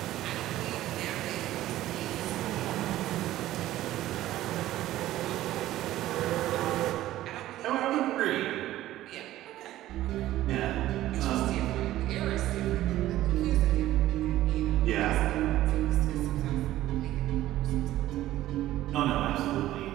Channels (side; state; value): left; quieter; 14.6 dB